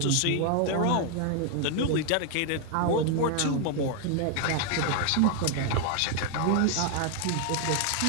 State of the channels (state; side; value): different; both; correlation 0.00